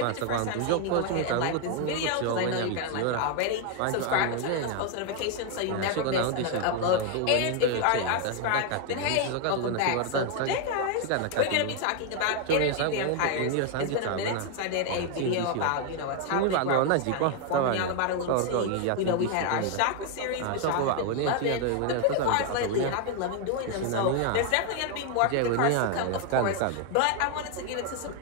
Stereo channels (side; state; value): both; different; correlation 0.01